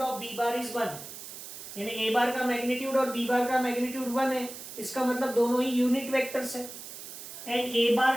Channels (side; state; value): right; noise; hiss, 12 dB below the sound